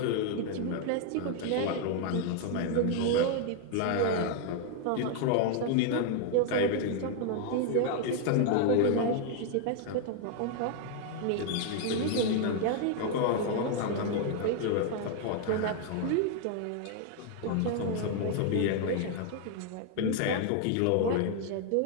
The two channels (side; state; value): both; different; correlation 0.00